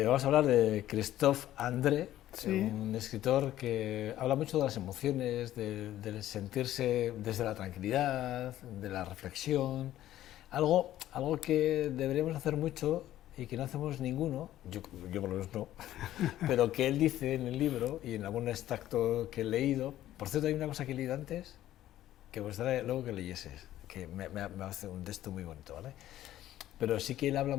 Vamos a hablar de Christophe André, Sí, un escritor que habla mucho de las emociones, del sentirse desde la tranquilidad, de la reflexión, algo que deberíamos hacer mucho y que no hacemos ninguno, yo por lo menos no, pero que él dice en el libro y en algún extracto que he leído. Por cierto, hay una cosa que he leído antes que me gustaría luego que leyeses, que me hace un texto muy bonito, ¿vale? Pero sí que él habla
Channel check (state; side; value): quieter; right; 13.4 dB